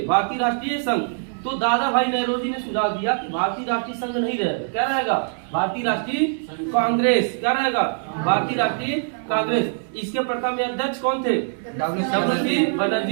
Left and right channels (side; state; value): left; silent; 63 dB below the other